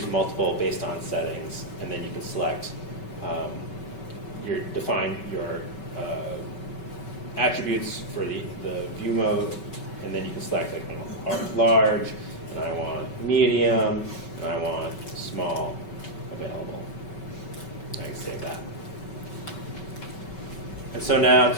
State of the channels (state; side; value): late; right; 5.3 ms